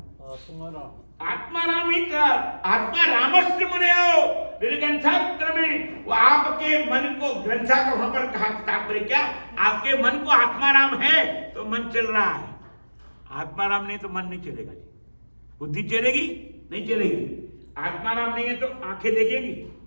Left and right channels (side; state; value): both; inverted; correlation -1.00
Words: आत्मा राम ही था, आत्मा रामस्य मुनियो निर्ग्रंथात्र में, वो आपके मन को, ग्रंथा का वहां पर कहा तात्पर्य क्या, आपके मन को आत्मा राम है तो मन चल रहा है, आत्मा राम नहीं तो मन नहीं चलेगा। बुद्धि चलेगी नहीं चलेगी, आत्मा राम नहीं है तो आंखें देखेंगी,